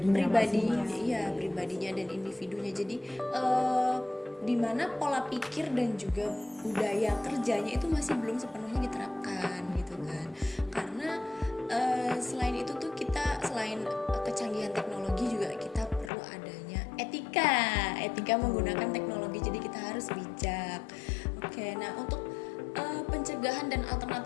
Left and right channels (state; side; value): drops out; right; at 16.1 s